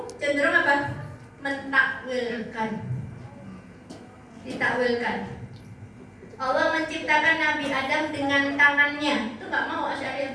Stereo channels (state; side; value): identical; both; correlation 1.00